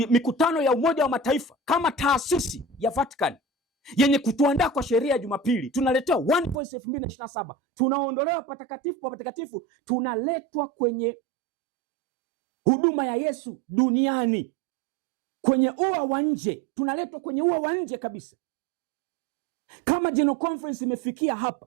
mikutano ya Umoja wa Mataifa kama taasisi ya Vatican, yenye kutuandaa kwa sheria ya Jumapili. Tunaletewa One Voice 2027, tunaondolewa patakatifu pa patakatifu, tunaletwa kwenye huduma ya Yesu duniani, kwenye ua wa nje, tunaletwa kwenye ua wa nje kabisa. Kama General Conference imefikia hapa,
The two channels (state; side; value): drops out; left; at 6.6 s